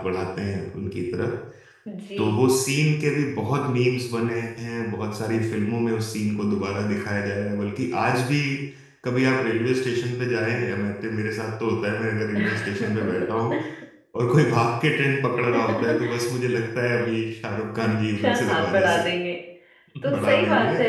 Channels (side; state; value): both; identical; correlation 1.00